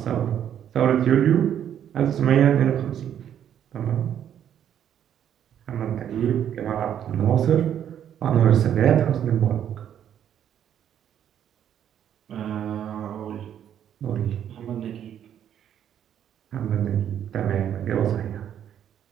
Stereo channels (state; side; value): quieter; left; 9.7 dB